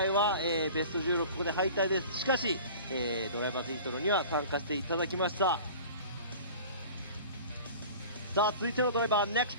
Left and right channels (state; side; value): inverted; both; correlation -0.41